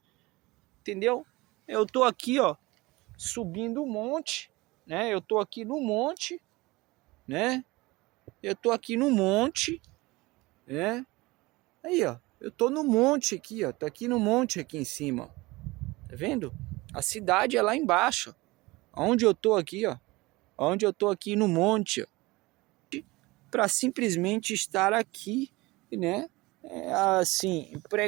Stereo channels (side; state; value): left; quieter; 21.7 dB